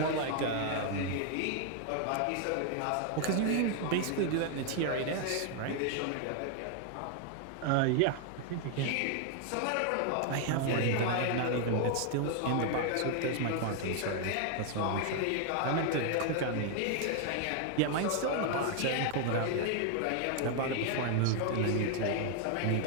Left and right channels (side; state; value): both; different; correlation 0.00